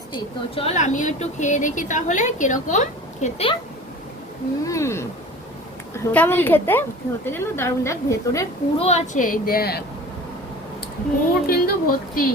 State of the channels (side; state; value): both; normal; correlation 0.40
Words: তো চল আমিও একটু খেয়ে দেখি তাহলে কিরকম খেতে। হুম, কেমন খেতে? খেতে যেন দারুণ। দেখ ভেতরে পুরো আছে, এই দেখ পুর কিন্তু ভর্তি।